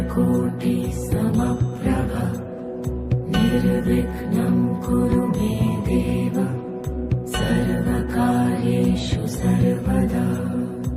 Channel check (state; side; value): identical; both; correlation 1.00